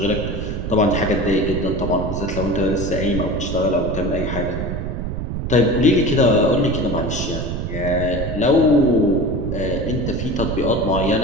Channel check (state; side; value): noise; right; rumble, 4 dB below the sound